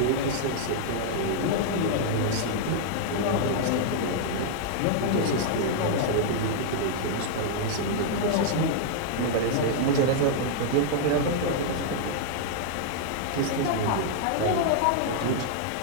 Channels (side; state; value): both; different; correlation -0.01